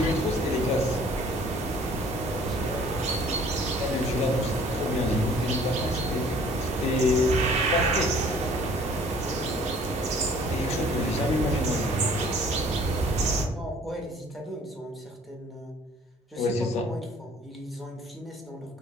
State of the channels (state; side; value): normal; both; correlation 0.54